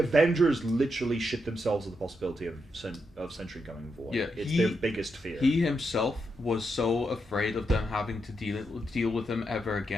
literally shit themselves at the possibility of Sentry going void. Yeah, it's their biggest fear. He himself was so afraid of them having to deal with him ever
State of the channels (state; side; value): normal; both; correlation 0.83